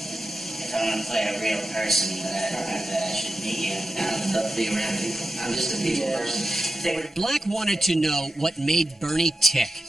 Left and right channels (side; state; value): both; normal; correlation 0.91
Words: I'm going to play a real person that I should meet you. I would love to be around people. I'm just a people person. Black wanted to know what made Bernie tick,